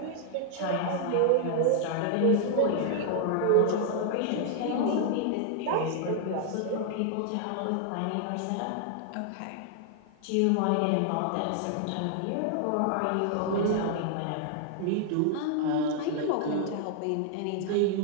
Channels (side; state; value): both; different; correlation 0.00